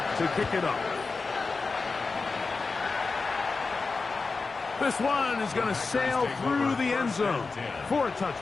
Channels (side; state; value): right; quieter; 4.2 dB